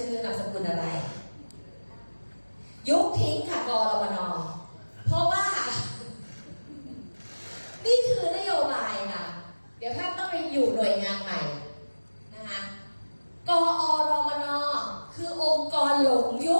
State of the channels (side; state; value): both; inverted; correlation -1.00